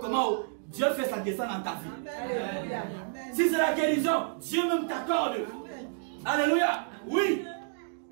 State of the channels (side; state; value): left; silent; digital silence